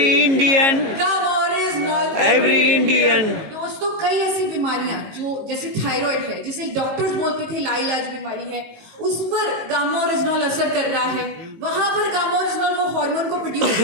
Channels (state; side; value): late; left; 19 ms